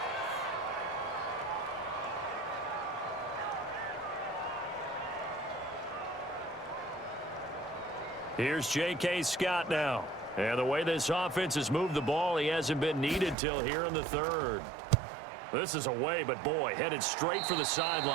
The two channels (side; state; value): left; drops out; at 13.4 s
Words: Here's J.K. Scott now. And the way this offense has moved the ball, he hasn't been needed till here in the third. This is away, but boy, headed straight for the